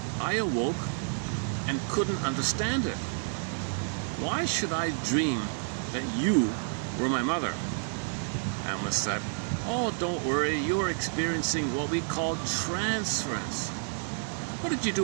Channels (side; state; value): left; silent; 58 dB below the other